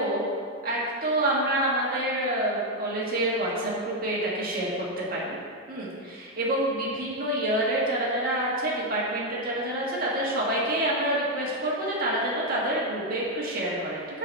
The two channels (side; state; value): both; normal; correlation 0.03